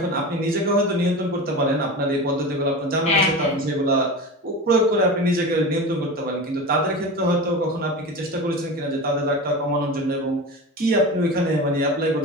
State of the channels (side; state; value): both; normal; correlation 0.29